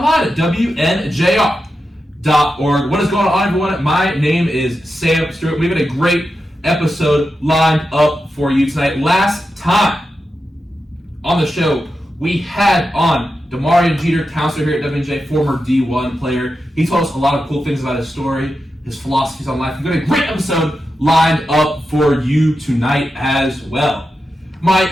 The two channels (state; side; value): normal; both; correlation 0.89